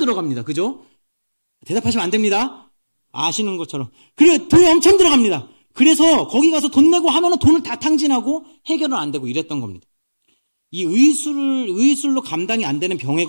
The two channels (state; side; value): inverted; both; correlation -1.00